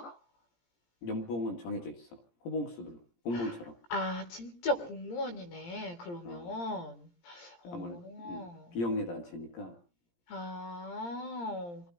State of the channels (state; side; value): late; right; 17 ms